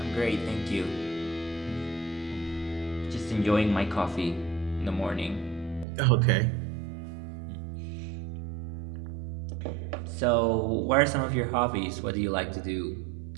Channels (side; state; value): left; drops out; at 5.9 s